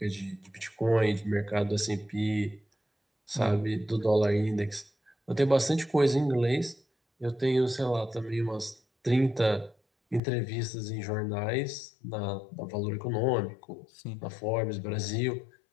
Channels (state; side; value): drops out; right; at 10.2 s